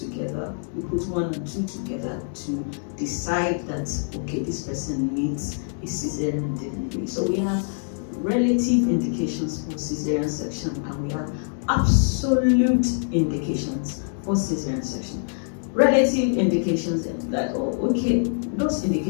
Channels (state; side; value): silent; right; digital silence